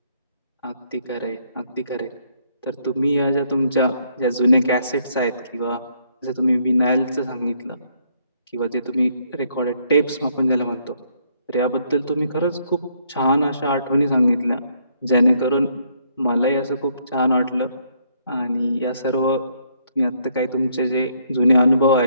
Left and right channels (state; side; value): inverted; both; correlation -0.70